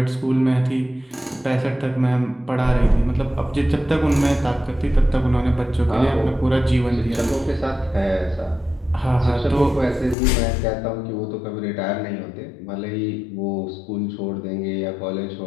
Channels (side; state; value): right; drops out; at 10.2 s